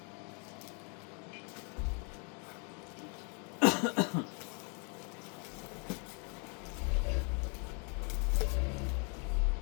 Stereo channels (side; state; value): right; quieter; 36.9 dB